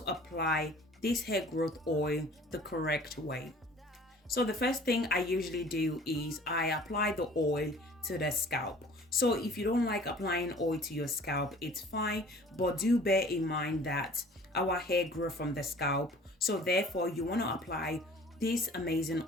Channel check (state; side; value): normal; both; correlation 0.49